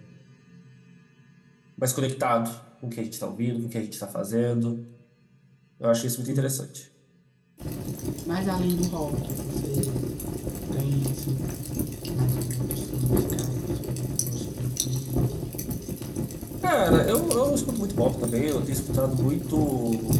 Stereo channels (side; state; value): both; identical; correlation 1.00